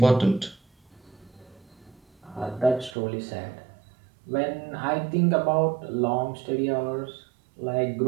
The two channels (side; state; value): left; drops out; at 3.0 s